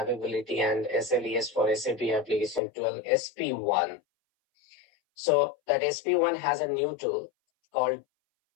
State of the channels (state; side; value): drops out; right; at 2.6 s